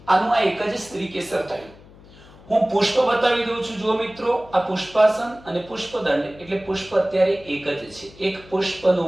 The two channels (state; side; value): noise; left; hum, 23 dB below the sound